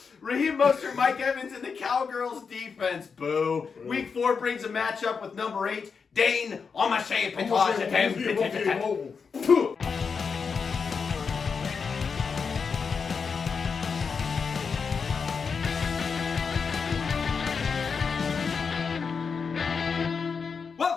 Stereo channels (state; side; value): quieter; right; 5.6 dB